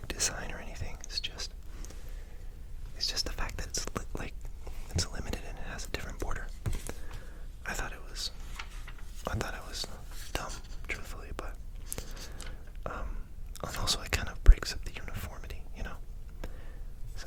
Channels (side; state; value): both; identical; correlation 1.00